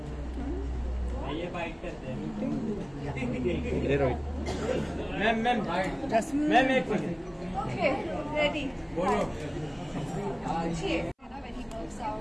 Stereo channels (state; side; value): identical; both; correlation 1.00